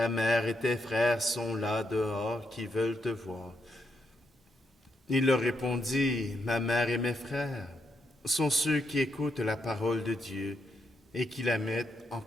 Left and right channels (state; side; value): normal; both; correlation 0.79